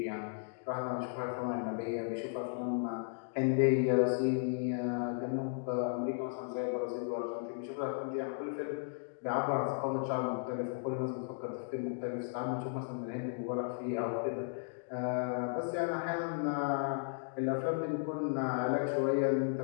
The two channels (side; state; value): right; silent; digital silence